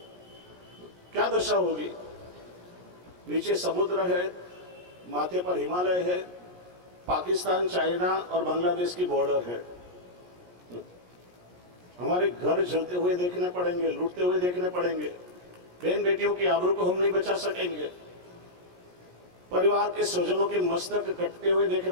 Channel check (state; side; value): late; left; 17 ms